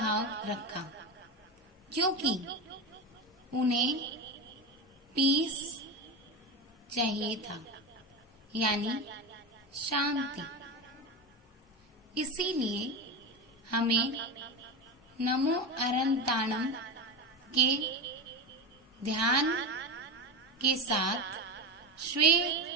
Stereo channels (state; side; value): normal; both; correlation 0.19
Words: रखा, क्योंकि उन्हें पीस चाहिए था, यानी शांति। इसीलिए हमें नमो अरहंताणम के ध्यान के साथ